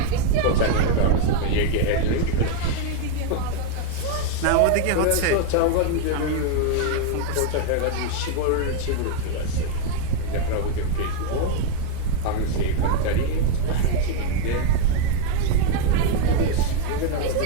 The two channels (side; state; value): both; different; correlation 0.01